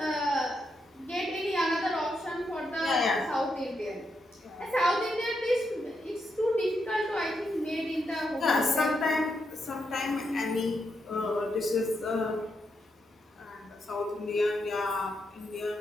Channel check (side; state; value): both; normal; correlation 0.82